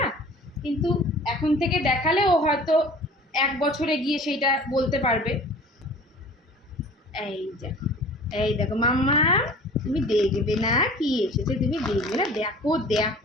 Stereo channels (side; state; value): both; normal; correlation 0.44